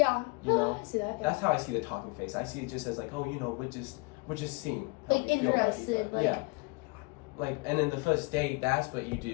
You know? I see that, yeah. That's how I see the talking phase. I see it just as like, oh, we're just seeing. Like, interested. Like, yeah. Like, and then the first date, that's what you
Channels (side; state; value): right; quieter; 28.6 dB